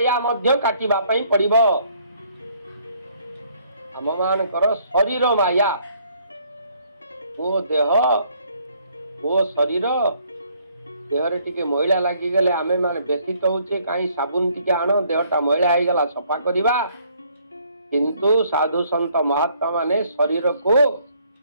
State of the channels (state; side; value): inverted; both; correlation -0.65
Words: मध्य काटिबा पई पड़िबो हम मानकर शरीर माया वो देह वो शरीर देहरे टिके मैला लागी गले आमे माने व्यथित होचे काई साबुन टिके आनो देहटा मैला हो गला सफा करिबा किंतु साधु संत महात्मा माने शरीर को